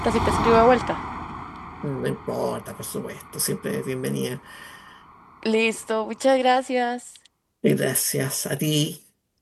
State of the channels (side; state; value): both; identical; correlation 1.00